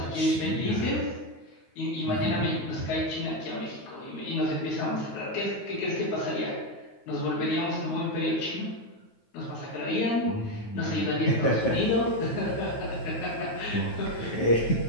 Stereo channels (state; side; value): late; right; 9.3 ms